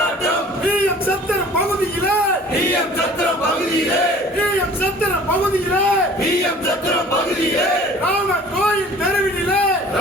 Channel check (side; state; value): both; normal; correlation 0.48